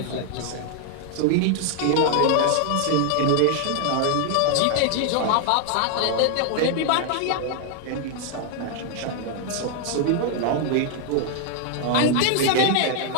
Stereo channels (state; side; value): different; both; correlation 0.00